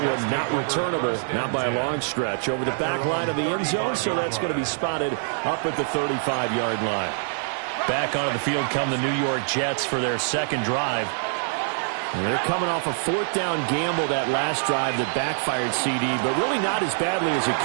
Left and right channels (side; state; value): left; silent; digital silence